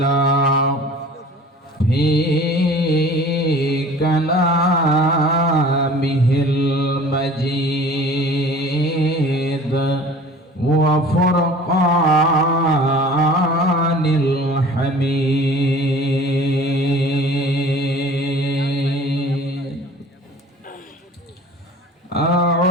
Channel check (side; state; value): both; normal; correlation 0.45